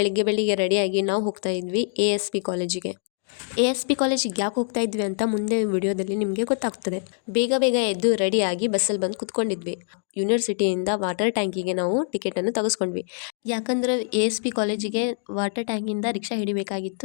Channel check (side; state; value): right; silent; digital silence